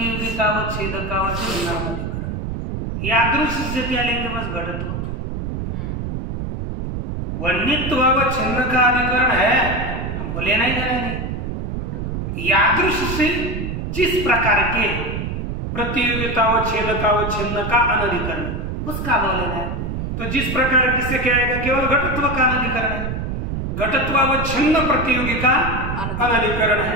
अधिकरण। यादृश से क्या लेंगे? बस घटत्व। वन्यत्वावच्छिन्न का अधिकरण है, हमको लेना ही देना नहीं। यादृश से जिस प्रकार के प्रतियोगितावच्छेदकावच्छिन्न का अनधिकरण, उसका भाव लेना है। तो जिस प्रकार किससे क्या आएगा? केवल घटत्व का अनधिकरण है, घटत्वावच्छिन्न प्रतियोगी का अनधिकरण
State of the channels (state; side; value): noise; right; rumble, 4 dB below the sound